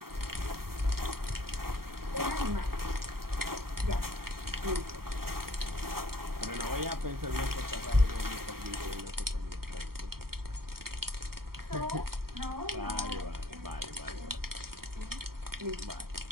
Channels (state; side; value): late; left; 0.94 ms